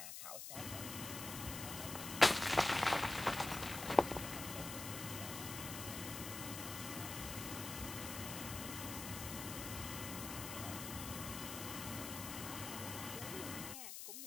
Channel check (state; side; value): noise; left; hiss, 7 dB below the sound